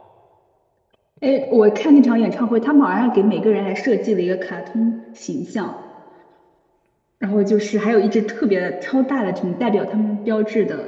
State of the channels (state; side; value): identical; both; correlation 1.00